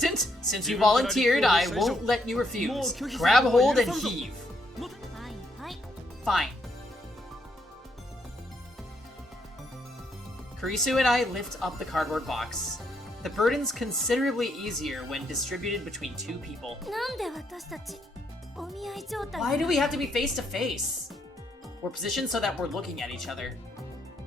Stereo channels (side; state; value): both; normal; correlation 0.75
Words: since you volunteered, I won't let you refuse. Grab hold and heave. はいはい。 Fine. Kurisu and I lift up the cardboard box. The burden's considerably easier when distributed between two people. なんで私たちお見合い状態 Why do we have to be face to face? We're positioned so that we're looking at each other.